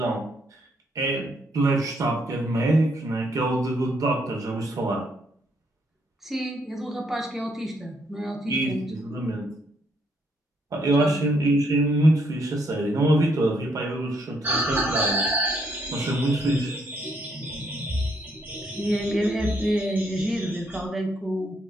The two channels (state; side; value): normal; both; correlation 0.73